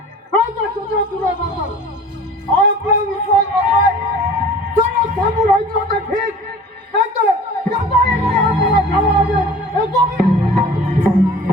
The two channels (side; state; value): both; normal; correlation 0.44